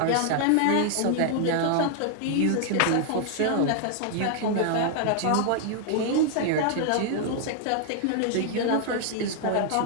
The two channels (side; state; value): both; different; correlation 0.00